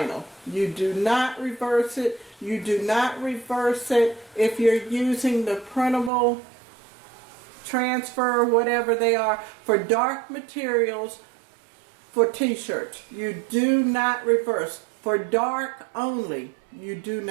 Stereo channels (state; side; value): drops out; left; at 6.1 s